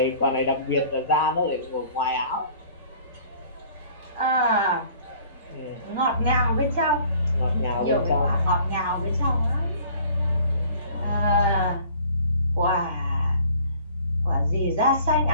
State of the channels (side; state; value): both; inverted; correlation -0.52